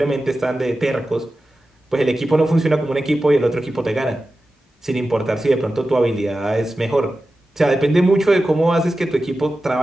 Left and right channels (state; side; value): normal; both; correlation 0.93